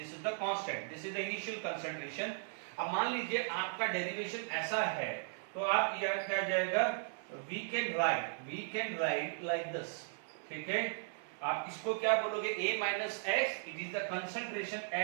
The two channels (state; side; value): silent; left; 53 dB below the other